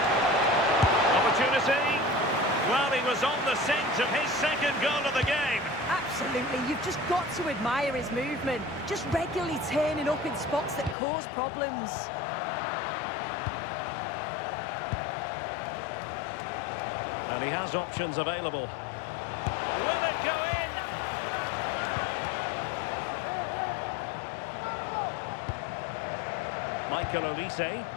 Opportunity. Well, he was on the scent of his second goal of the game. Absolutely. You've just got to admire his movement. Just regularly turning up in spots that cause problems. And he has options available. Will it go in? Michael Olise.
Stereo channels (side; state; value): right; drops out; at 11.0 s